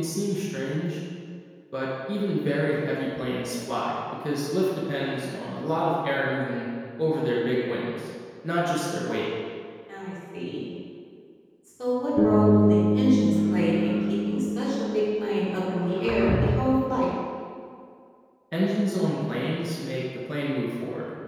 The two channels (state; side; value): identical; both; correlation 1.00